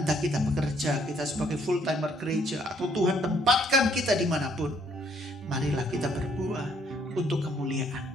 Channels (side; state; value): both; normal; correlation 0.66